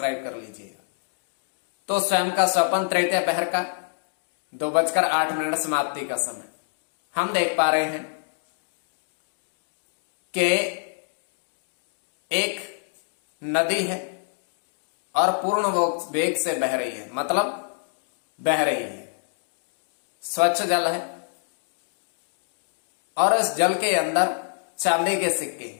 कर लीजिएगा। तो स्वयं का स्वप्न तृतीय पहर का 2:08 समाप्ति का समय हम देख पा रहे हैं कि एक नदी है और पूर्ण वेग से बह रही है, मतलब बह रही है, स्वच्छ जल है, और इस जल के अंदर चांदी के सिक्के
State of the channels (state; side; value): silent; right; digital silence